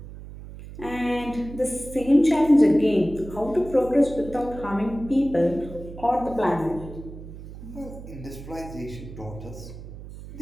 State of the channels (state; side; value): noise; right; hum, 13 dB below the sound